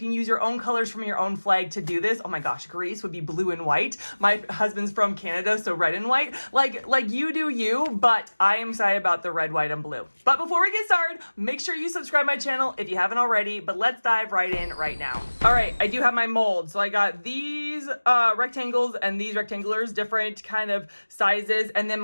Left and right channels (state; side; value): inverted; both; correlation -1.00